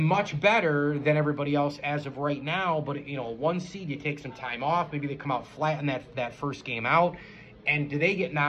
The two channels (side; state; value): both; identical; correlation 1.00